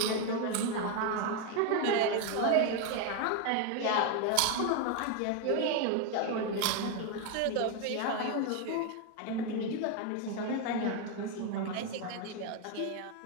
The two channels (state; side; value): different; both; correlation 0.01